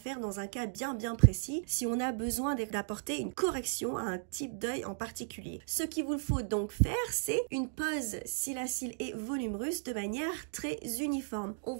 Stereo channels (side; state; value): left; silent; digital silence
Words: dans un cas bien précis si on a besoin d'apporter une correction à un type d'œil en particulier. Ce qu'il vous faut donc faire, c'est une pose cils à cils et volume russe de manière très uniforme. On